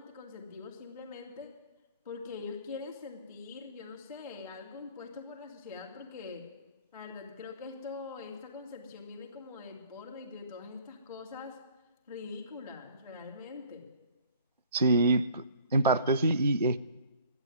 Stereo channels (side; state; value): both; inverted; correlation -0.53